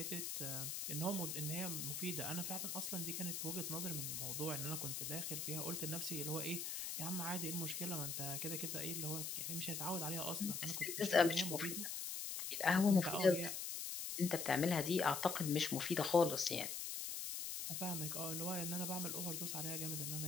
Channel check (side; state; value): left; noise; hiss, 3 dB below the sound